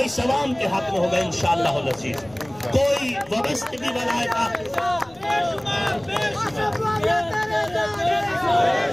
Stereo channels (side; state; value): left; noise; rumble, 26 dB below the sound